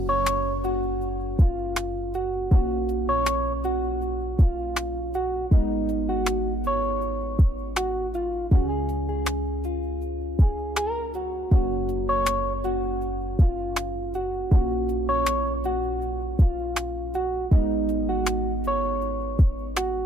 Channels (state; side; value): normal; both; correlation 0.71